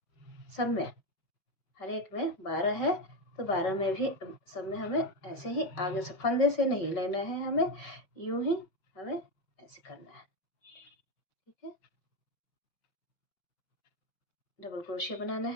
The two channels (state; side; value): late; right; 5.3 ms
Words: सब में हर एक में 12 है तो 12 में भी सब में हमें ऐसे ही आगे से फंदे से नहीं लेना है, हमें यूं ही हमें ऐसे करना है। ठीक है, डबल क्रोशिया बनाना